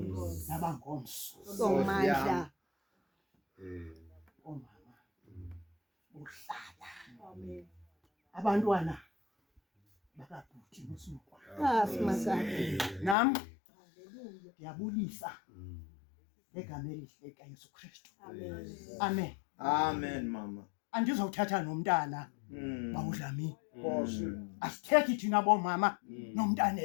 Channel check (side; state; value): right; drops out; at 13.2 s